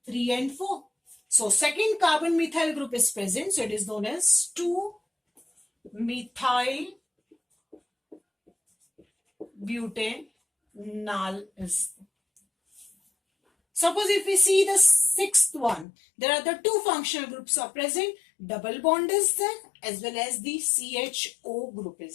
3 and 4. So second carbon methyl group is present, so it is known as 2-methyl butanol is there. Suppose if we see the sixth one, there are the 2 functional groups are present, double bond is there as well as the CHO group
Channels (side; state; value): right; drops out; at 15.9 s